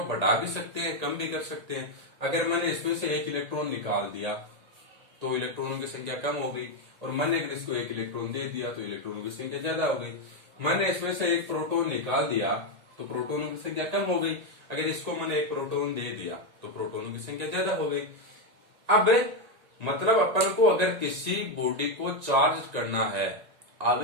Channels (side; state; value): left; late; 1.8 ms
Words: बढ़ा भी सकते हैं, कम भी कर सकते हैं। अगर मैंने इसमें से 1 इलेक्ट्रॉन निकाल दिया तो इलेक्ट्रॉनों की संख्या कम हो गई, और मैंने अगर इसको 1 इलेक्ट्रॉन दे दिया तो इलेक्ट्रॉनों की संख्या ज्यादा हो गई। मैंने इसमें से 1 प्रोटॉन निकाल दिया तो प्रोटॉनों की संख्या कम हो गई। अगर इसको मैंने 1 प्रोटॉन दे दिया तो प्रोटॉनों की संख्या ज्यादा हो गई। अब मतलब अपन को अगर किसी बॉडी को चार्ज करना है,